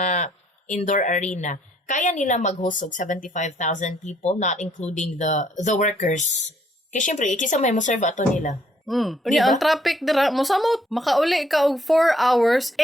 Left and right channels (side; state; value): both; normal; correlation 0.66